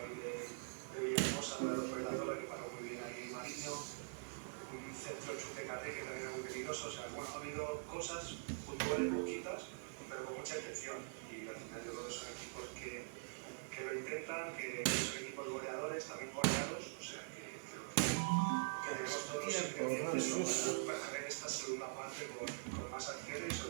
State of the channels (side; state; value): left; silent; digital silence